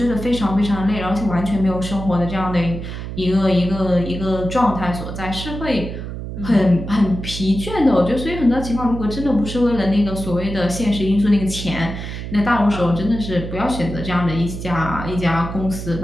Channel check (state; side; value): noise; right; hum, 7 dB below the sound